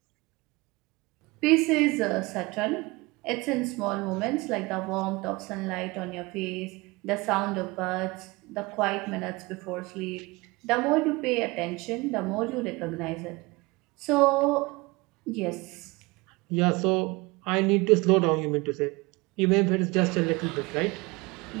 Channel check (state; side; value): quieter; left; 24.0 dB